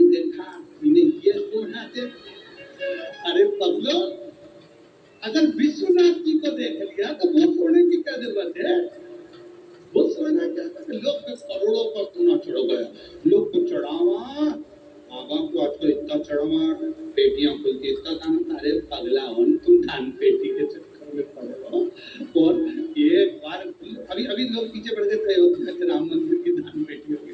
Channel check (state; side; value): identical; both; correlation 1.00